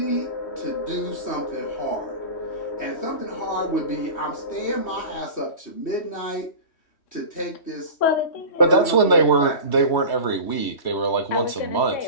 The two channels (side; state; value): right; late; 2.6 ms